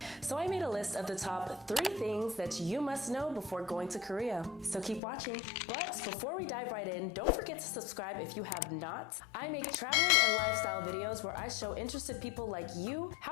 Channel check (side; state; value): right; drops out; at 5.0 s